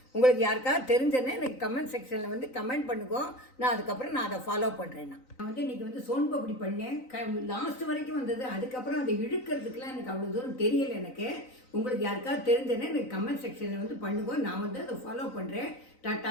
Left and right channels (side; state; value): right; late; 3.9 ms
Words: உங்களுக்கு யாருக்காவது தெரிஞ்சேன்னா எனக்கு கமெண்ட் செக்ஷனில் வந்து கமெண்ட் பண்ணுங்க. நான் அதுக்கப்புறம் நான் அதை ஃபாலோ பண்ணுறேன். நான் வந்து இன்றைக்கி வந்து சோன் பப்படி பண்ணேன். லாஸ்ட் வரைக்கும் வந்தது. அதுக்கப்புறம் அதை இழுக்கிறதுக்கெலாம் எனக்கு அவ்வளோ தூரம் தெரியலை. எனக்கு உங்களுக்கு யாருக்காவது தெரிஞ்சேன்னா எனக்கு கமெண்ட் செக்ஷனில் வந்து பண்ணுங்க. நான் வந்து அதை ஃபாலோ பண்ணுறேன்.